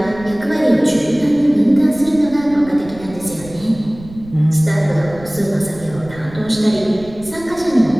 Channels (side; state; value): right; noise; rumble, 18 dB below the sound